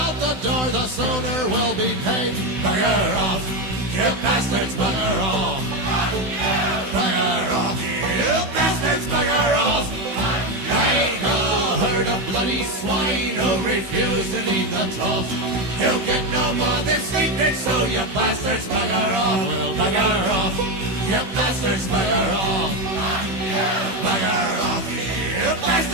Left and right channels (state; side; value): late; left; 16 ms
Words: out the door, the sooner we'll be paid. Bugger off, you bastards, bugger off. Bugger off, you bastards, bugger off. Like a herd of bloody swine who refuse to leave the trough. You'll get no more this evening, so you bastards bugger off. Well, bugger off, you bastards bugger off. Bugger off, you